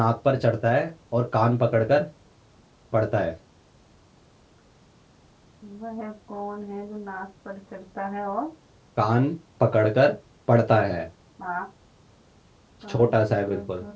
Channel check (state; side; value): identical; both; correlation 1.00